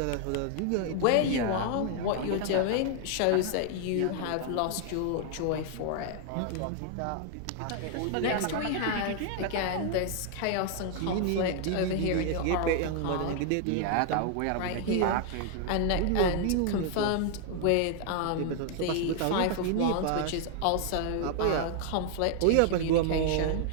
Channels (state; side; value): different; both; correlation 0.00